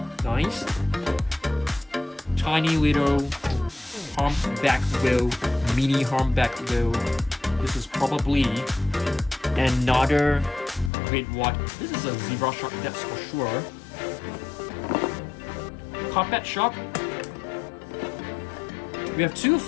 Nice. Tiny little humpback whale, mini humpback whale. This is probably another great white. This is a zebra shark, that's for sure. Carpet shark. We have two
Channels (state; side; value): drops out; right; at 10.9 s